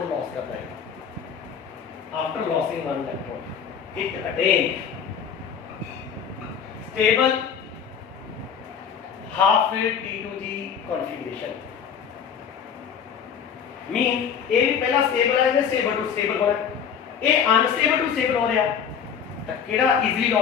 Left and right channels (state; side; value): quieter; right; 7.5 dB